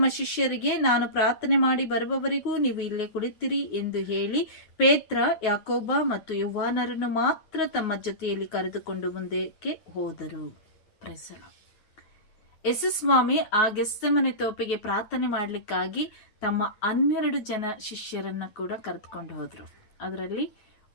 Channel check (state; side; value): late; right; 9.4 ms